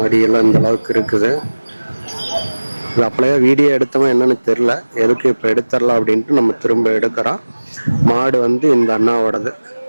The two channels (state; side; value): inverted; both; correlation -1.00